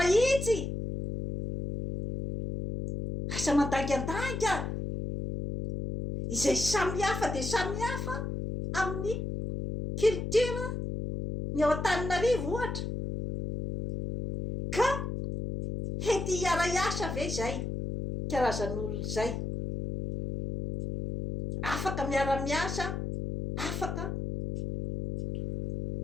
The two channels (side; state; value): left; noise; hum, 4 dB below the sound